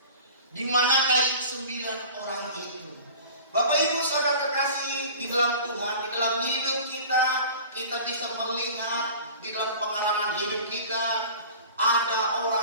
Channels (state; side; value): inverted; both; correlation -0.41